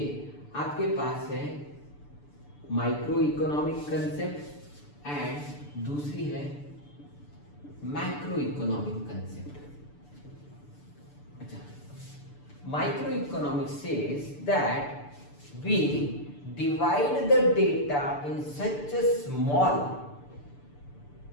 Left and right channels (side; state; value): right; late; 6.9 ms